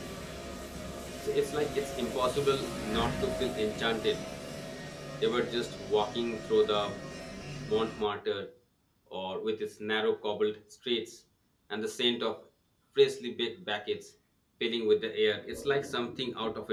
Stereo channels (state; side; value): identical; both; correlation 1.00